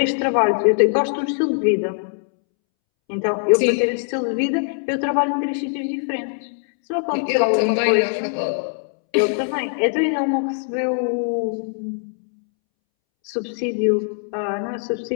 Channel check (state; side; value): silent; right; 65 dB below the other